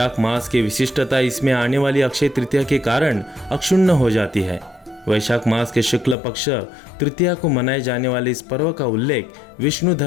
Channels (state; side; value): drops out; right; at 6.2 s